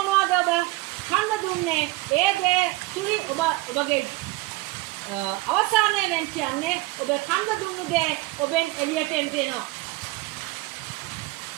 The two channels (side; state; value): left; quieter; 20.6 dB